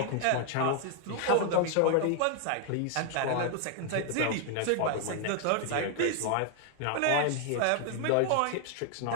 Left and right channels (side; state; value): both; different; correlation 0.00